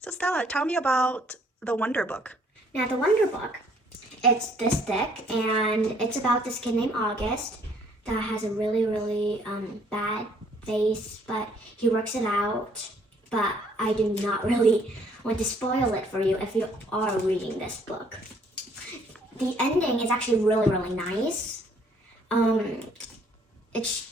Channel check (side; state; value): both; normal; correlation 0.63